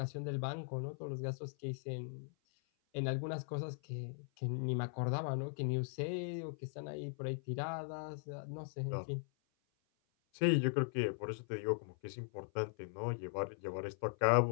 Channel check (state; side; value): silent; right; 51 dB below the other